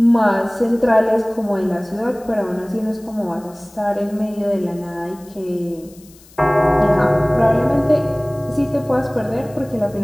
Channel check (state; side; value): noise; left; hiss, 25 dB below the sound